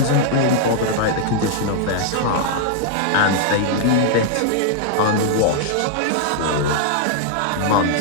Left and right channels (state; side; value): different; both; correlation -0.01